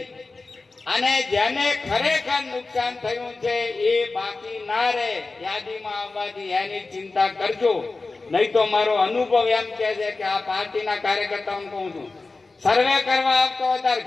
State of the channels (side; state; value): right; quieter; 3.7 dB